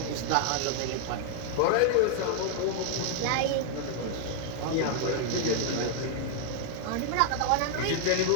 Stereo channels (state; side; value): different; both; correlation 0.00